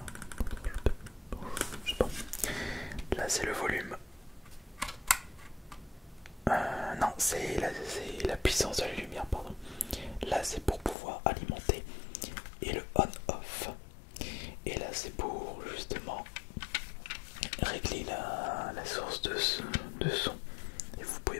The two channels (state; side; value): drops out; right; at 11.0 s